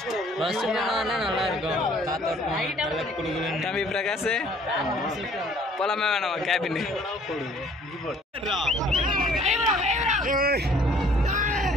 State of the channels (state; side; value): normal; both; correlation 0.57